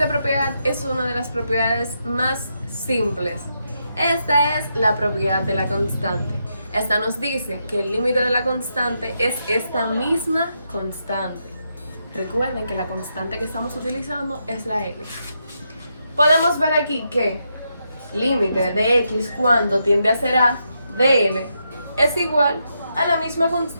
propiedad es una de las propiedades más simples. Esta es la propiedad de la constante. Esta nos dice que el límite de la constante es esta misma constante. Recuerden que la constante que estamos utilizando es la L. Podemos ver aquí que límite de x cuando tiende a ser a de L es igual a la misma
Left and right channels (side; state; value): both; inverted; correlation -0.82